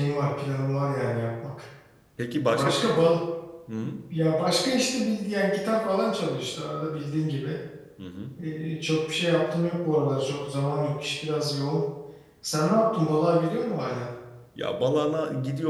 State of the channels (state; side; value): identical; both; correlation 1.00